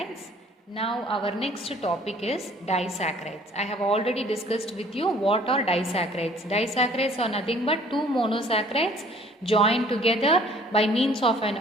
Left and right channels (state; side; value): normal; both; correlation 0.55